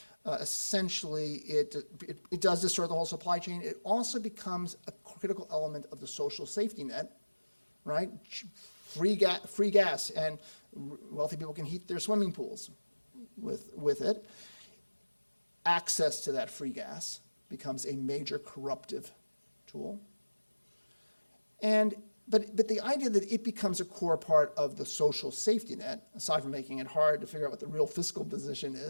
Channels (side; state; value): both; inverted; correlation -1.00